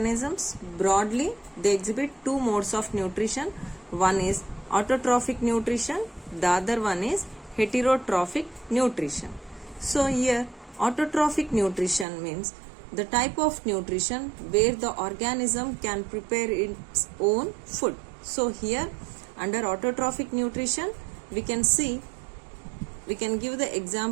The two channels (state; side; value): drops out; left; at 12.1 s